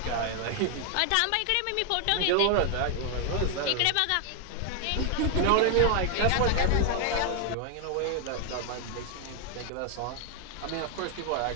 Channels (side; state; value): both; different; correlation 0.01